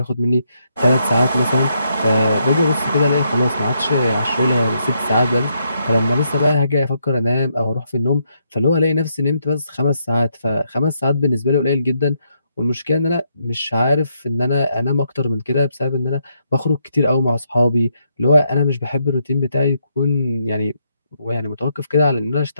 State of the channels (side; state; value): both; inverted; correlation -0.77